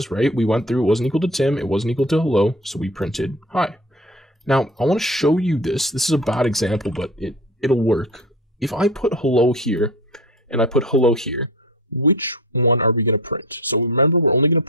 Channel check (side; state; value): both; normal; correlation 0.35